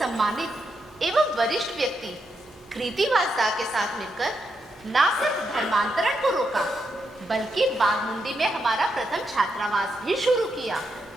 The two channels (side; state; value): both; normal; correlation 0.83